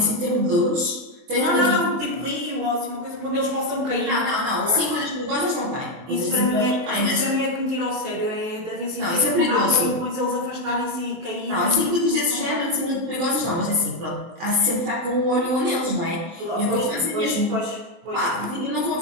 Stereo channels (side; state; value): left; late; 23 ms